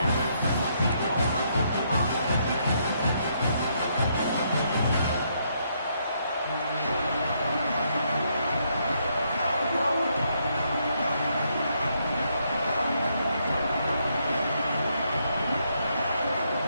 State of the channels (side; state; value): both; inverted; correlation -0.74